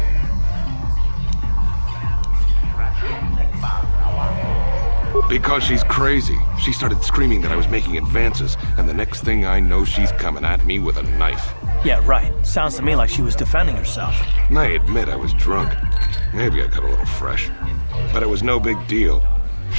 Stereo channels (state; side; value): inverted; both; correlation -1.00